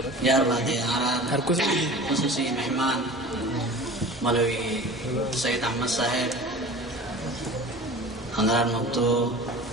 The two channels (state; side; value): normal; both; correlation 0.38